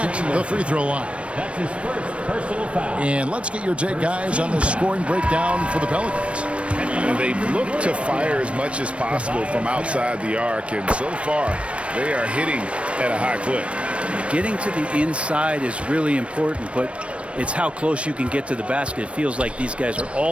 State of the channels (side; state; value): left; late; 0.061 ms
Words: the free throw line. That's his first personal foul. And let's get your take, guys, on the scoring breakdown for the Pelicans. They've looked to fire as much as possible from outside the arc, and so far they are hitting at a high clip. Getting to the inside is really important, but it's how close you can get to the basket. It feels like these guys are